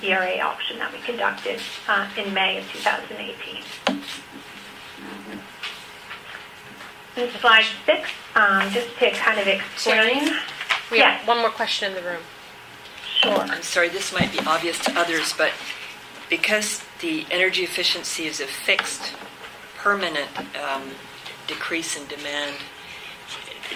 ERA auction that we conducted in May of 2018. In slide 6, just to kind of explain We have Yes. one more question in the room. Sure. I'm sorry, this might be obvious to others, but because the energy efficiency is a fixed, permanent decrease in demand,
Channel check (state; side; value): identical; both; correlation 1.00